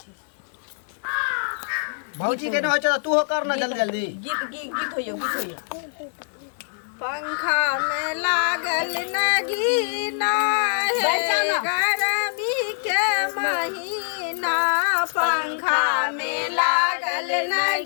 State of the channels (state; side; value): silent; right; 63 dB below the other